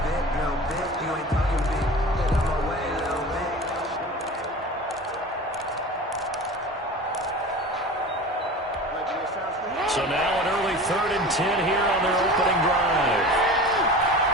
So now an early 3rd and 10 here on their opening drive.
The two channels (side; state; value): both; normal; correlation 0.35